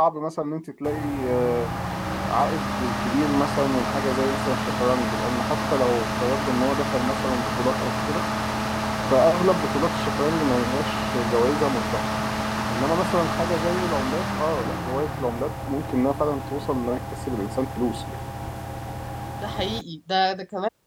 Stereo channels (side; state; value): both; identical; correlation 1.00